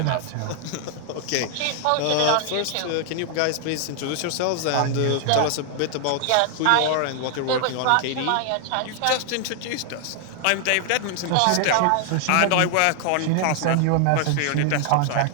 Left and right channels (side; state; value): both; different; correlation 0.00